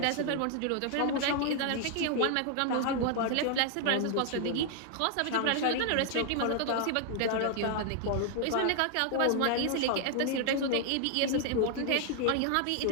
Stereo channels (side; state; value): both; different; correlation 0.00